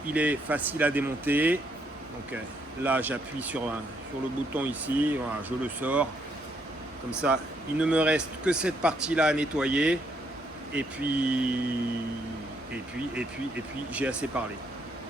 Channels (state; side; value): normal; both; correlation 0.73